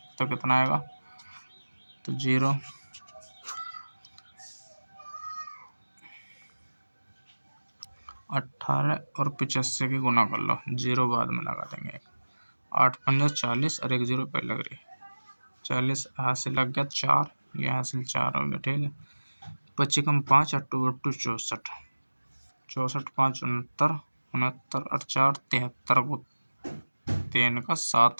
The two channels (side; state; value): both; inverted; correlation -1.00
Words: तो कितना आएगा, तो 0 18 और 85 की गुना कर लो, 0 बाद में लगा देंगे। 8 पंजा 40 और 1 0 पहले लग रही, 40 हासिल लग गया 4, ये हासिल 4 हो गया। ठीक है, 25 कम 5 अट्टू 64, 64 5 69, 69 और 4 73 को 3 का